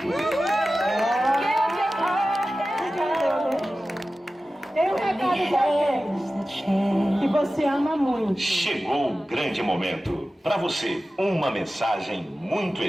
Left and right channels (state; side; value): normal; both; correlation 0.95